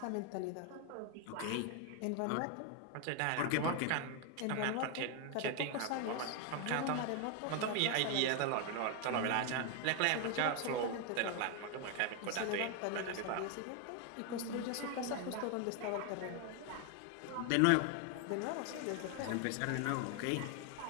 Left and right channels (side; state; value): both; different; correlation 0.01